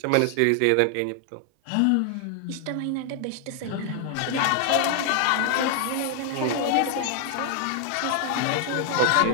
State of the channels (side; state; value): both; different; correlation 0.00